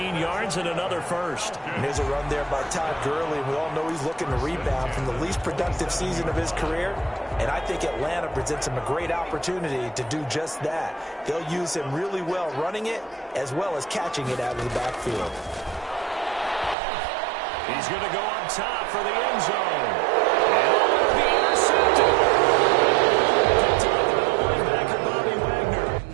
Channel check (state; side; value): drops out; left; at 16.8 s